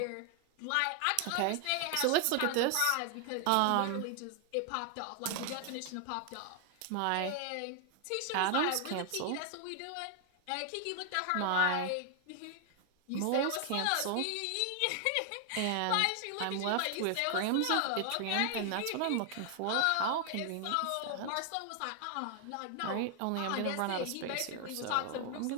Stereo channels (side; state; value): both; different; correlation 0.00